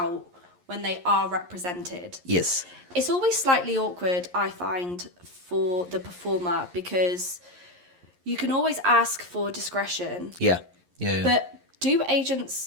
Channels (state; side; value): late; left; 11 ms